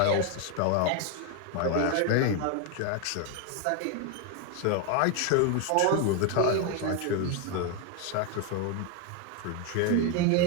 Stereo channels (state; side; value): different; both; correlation 0.01